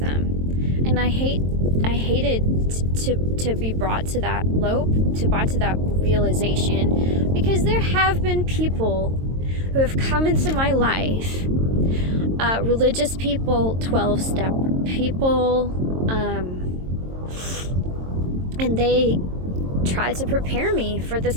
And I hated to be brought to that realization, because there have been people who have come into my life, religious people, 12-step people, and they tried to prepare me for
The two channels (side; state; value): left; late; 22 ms